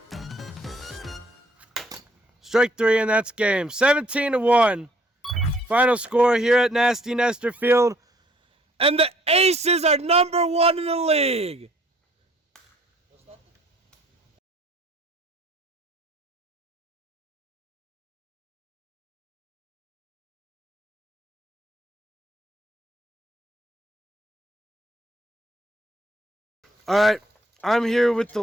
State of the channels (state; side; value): normal; both; correlation 0.61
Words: Strike three, and that's game. 17-1. Final score here at Nasty Nestor Field. And the Aces are #1 in the league. All right, I'm here with the